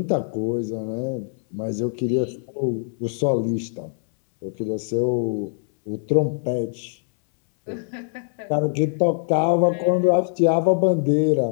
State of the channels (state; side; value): silent; right; 64 dB below the other